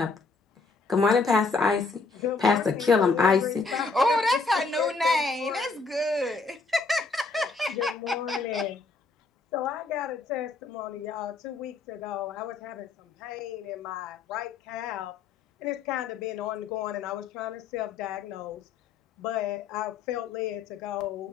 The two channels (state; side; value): quieter; right; 4.2 dB